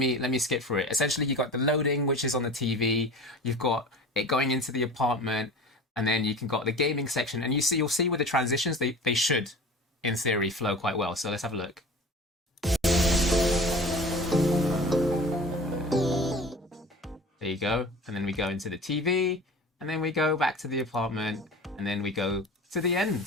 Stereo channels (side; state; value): both; normal; correlation 0.38